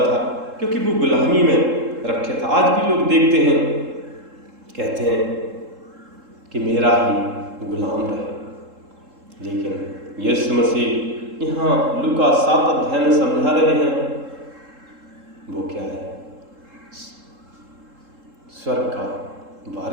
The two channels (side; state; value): left; late; 3.7 ms